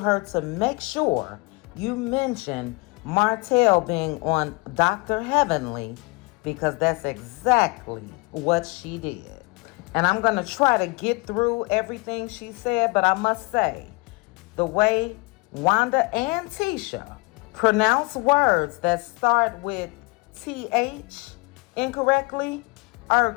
her to make sure you mention Martel being on Dr. Heavenly, because that's exactly what she did. And I'm going to try to get through everything she said, but I must say, the way Wanda and Tisha pronounce words that start with TH incorrectly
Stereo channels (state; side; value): quieter; right; 27.1 dB